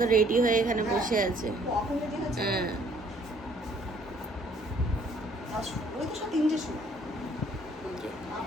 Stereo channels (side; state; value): both; normal; correlation 0.61